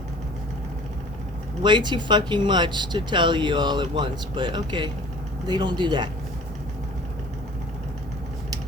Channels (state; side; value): normal; both; correlation 0.47